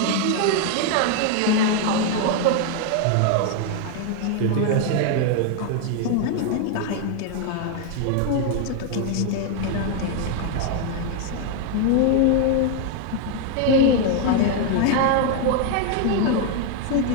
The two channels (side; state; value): both; different; correlation 0.00